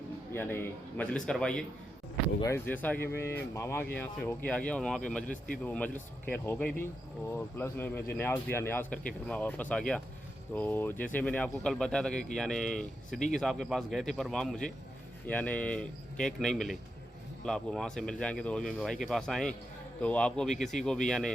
यानी मजलिस करवाई है। तो गाइस जैसा कि मैं मामा के यहाँ से होके आ गया और वहाँ पे मजलिस थी, तो वो मजलिस खैर हो गई थी और प्लस में मुझे न्याज दिया, न्याज करके फिर मैं वापस आ गया। तो जैसे मैंने आपको कल बताया था कि यानी सिद्दीकी साहब के पास गए थे, पर वहाँ मुझे यानी केक नहीं मिले। आपको वहाँ से मिल जाएंगे। तो अभी मेरे भाई के पास आए, तो आपको भी किसी को भी यानी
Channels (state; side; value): normal; both; correlation 0.86